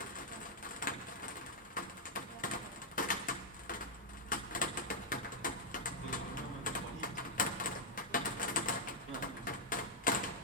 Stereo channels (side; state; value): both; normal; correlation -0.04